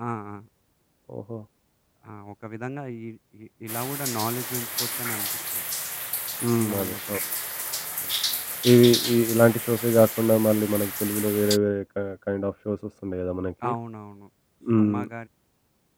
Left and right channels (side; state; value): both; identical; correlation 1.00